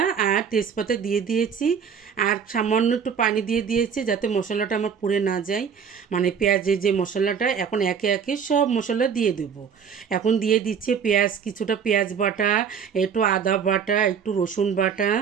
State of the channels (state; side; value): quieter; left; 7.0 dB